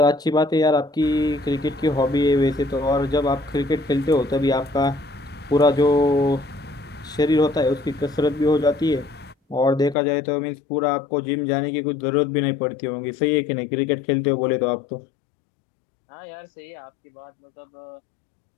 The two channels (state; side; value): drops out; right; at 10.0 s